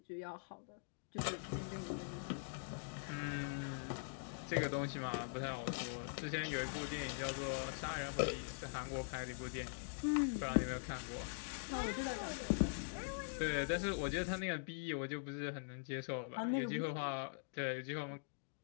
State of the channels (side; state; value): right; silent; digital silence